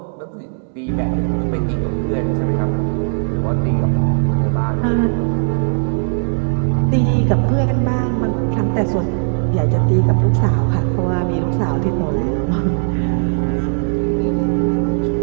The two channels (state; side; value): silent; left; digital silence